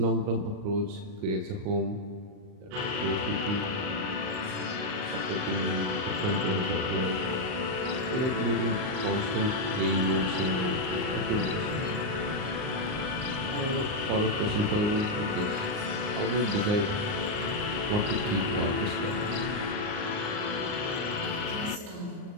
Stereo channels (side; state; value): left; late; 38 ms